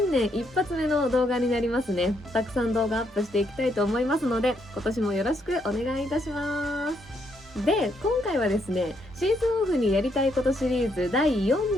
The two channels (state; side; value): normal; both; correlation 0.75